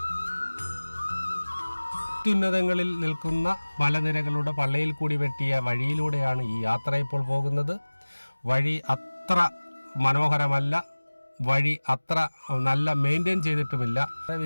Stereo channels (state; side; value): inverted; both; correlation -1.00